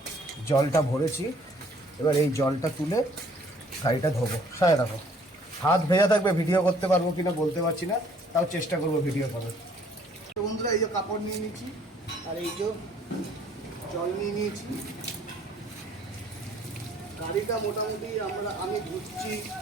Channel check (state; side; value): normal; both; correlation 0.59